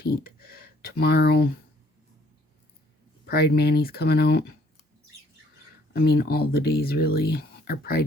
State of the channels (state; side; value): normal; both; correlation 0.62